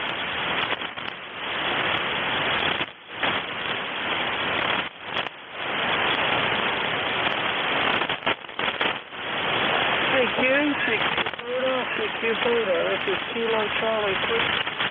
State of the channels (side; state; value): both; identical; correlation 1.00